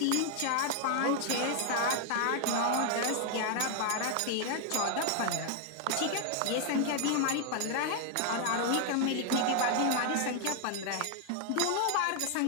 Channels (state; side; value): different; both; correlation 0.00